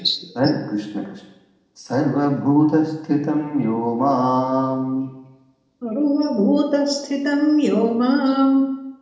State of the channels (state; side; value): identical; both; correlation 1.00